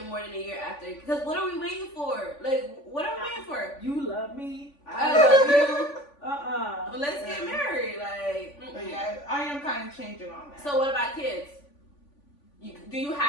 more than a year after. Because what are we waiting for? Like, what are we waiting for? You love me. I love you. Uh-uh. Let's get married. Like, But yeah, I am kind of changing on that. So what about kids? Do you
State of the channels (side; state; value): right; late; 3.5 ms